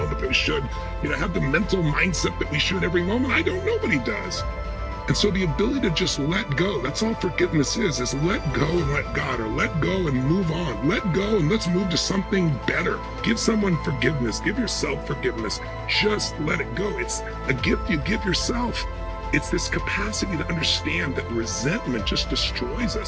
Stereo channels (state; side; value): identical; both; correlation 1.00